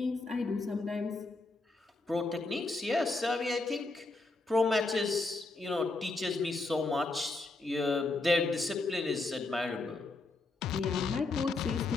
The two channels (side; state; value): right; quieter; 3.3 dB